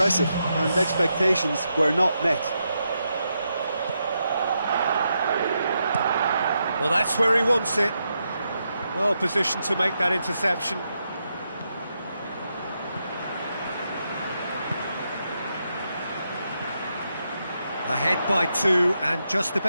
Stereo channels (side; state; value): both; inverted; correlation -0.83